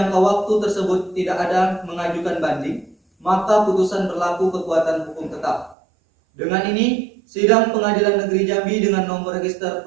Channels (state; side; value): drops out; left; at 5.8 s